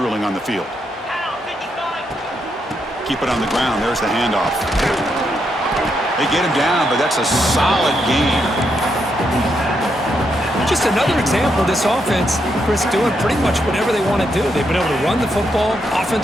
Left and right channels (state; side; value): normal; both; correlation 0.80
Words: on the field. Keep it on the ground. There's the handoff. They get him down, but that's a solid gain. Just another example of this offense, Chris, doing pretty much whatever they want to do. They've been able to run the football.